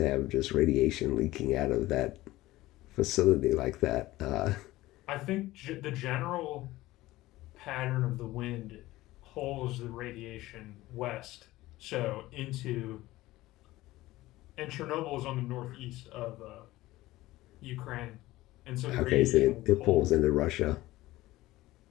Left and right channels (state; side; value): quieter; right; 17.6 dB